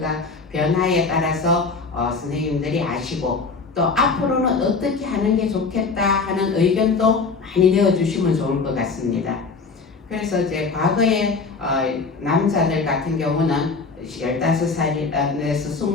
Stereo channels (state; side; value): quieter; right; 4.5 dB